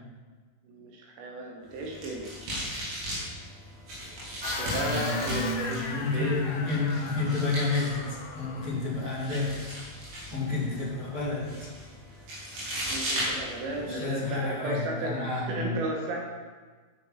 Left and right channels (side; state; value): left; late; 18 ms